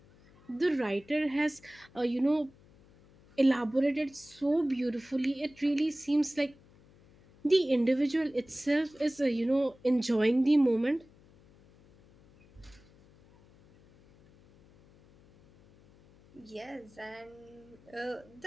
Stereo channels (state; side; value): noise; left; hum, 27 dB below the sound